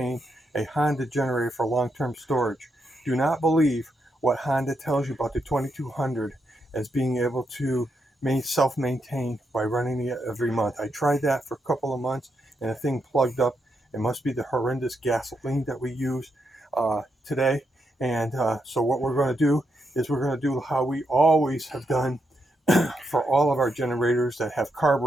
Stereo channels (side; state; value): both; normal; correlation 0.81